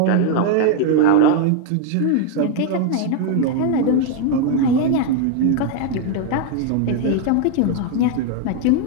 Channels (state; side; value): different; both; correlation 0.00